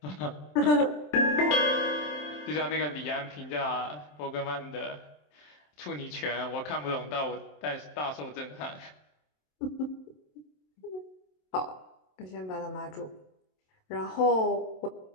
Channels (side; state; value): right; late; 27 ms